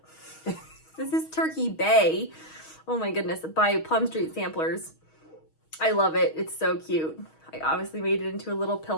This is Turkey Bay. Oh my goodness, by Plum Street Samplers. I love it. It's so cute. I obviously made it into a little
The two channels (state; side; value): late; right; 6.3 ms